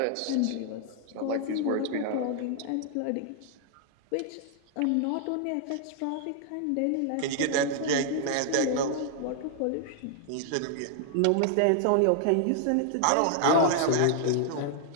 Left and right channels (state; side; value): different; both; correlation 0.00